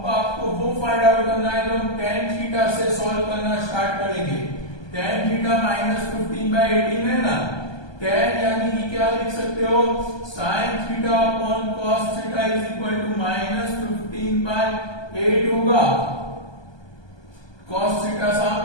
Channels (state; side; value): late; right; 1.2 ms